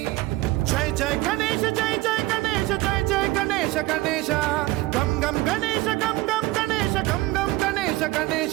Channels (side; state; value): left; quieter; 19.2 dB